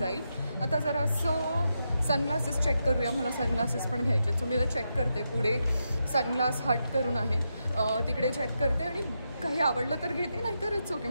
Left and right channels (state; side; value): inverted; both; correlation -0.85